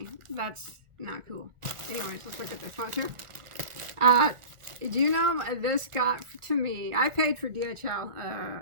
That's not cool. Anyways, let's look at this one too. Do you know this got to me? I paid for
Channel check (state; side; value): late; left; 1.4 ms